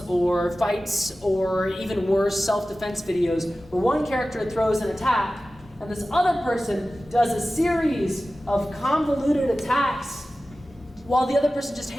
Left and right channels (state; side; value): normal; both; correlation 0.95